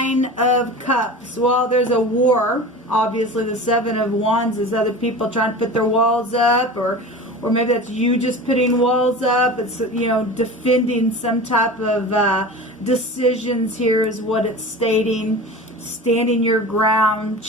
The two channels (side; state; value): both; normal; correlation 0.34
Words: of Cups. Well, there's a war. Obviously, the 7 of Wands is other people trying to put their walls up, or maybe that's you just putting walls up. It's, you know, defending some type of decisions here is what it's stating. Standing your ground,